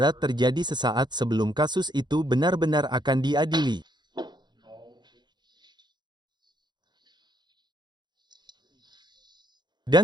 terjadi sesaat sebelum kasus itu benar-benar akan diadili.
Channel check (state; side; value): late; left; 0.21 ms